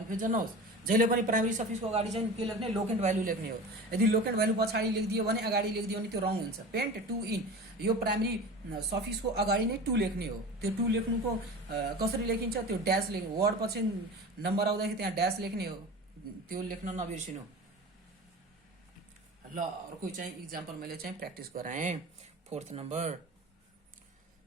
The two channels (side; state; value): both; normal; correlation 0.34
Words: नहोस्। जहिले पनि प्राइमेरी सफिक्सको अगाडि चाहिँ के लेख्ने, लोकेन्ट भ्यालु लेख्ने हो। यदि लोकेन्ट भ्यालु पछाडि लेखिदियो भने, अगाडि लेखिदियो भने त्यो रङ हुन्छ। पेन्ट टु इन, यो प्राइमेरी सफिक्सको अगाडि नै टु लेख्ने हो। त्यो टु लेख्नुको कसरी लेखिन्छ, त्यो ड्यास लेख्ने, वर्ड पछि नम्बर आउँदाखेरि त्यहाँ ड्यास लेख्ने हो, त्यो लेख्न नबिर्सिनु। ल अर्को चाहिँ इक्जाम्पल मैले चाहिँ प्र्याक्टिस गराएँ। 4th नम्बर